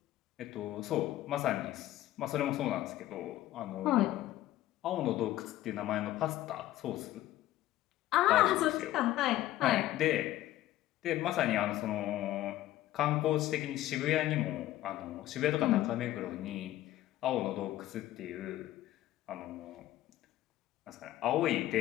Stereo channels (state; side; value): quieter; right; 14.6 dB